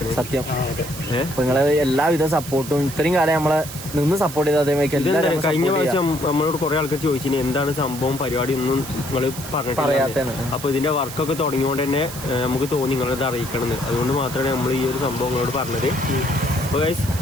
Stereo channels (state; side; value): noise; right; hiss, 11 dB below the sound